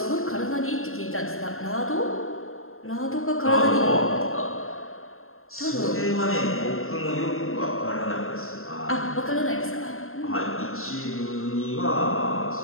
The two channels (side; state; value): right; late; 0.61 ms